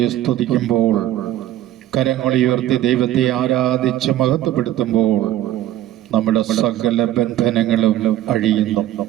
സ്തുതിക്കുമ്പോൾ, കരങ്ങളുയർത്തി ദൈവത്തെ ആരാധിച്ച് മഹത്വപ്പെടുത്തുമ്പോൾ നമ്മുടെ സകല ബന്ധനങ്ങളും അഴിയുന്നു.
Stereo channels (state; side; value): quieter; left; 13.4 dB